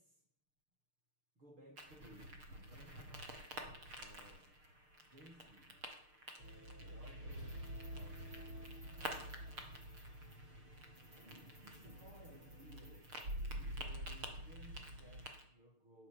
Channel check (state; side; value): late; left; 6.6 ms